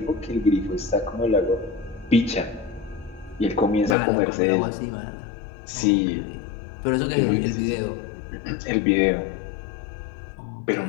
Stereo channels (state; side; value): drops out; right; at 4.0 s